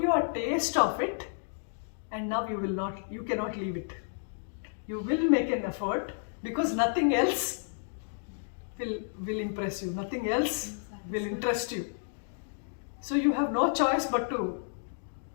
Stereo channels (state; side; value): silent; right; digital silence